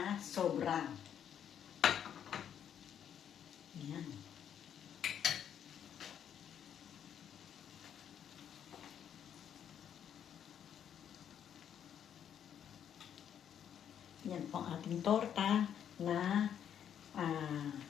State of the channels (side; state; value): right; quieter; 9.1 dB